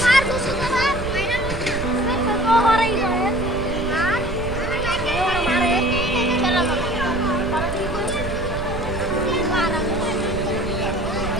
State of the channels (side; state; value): right; noise; rumble, 6 dB below the sound